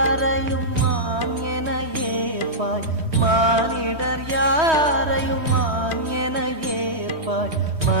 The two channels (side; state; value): left; late; 3.2 ms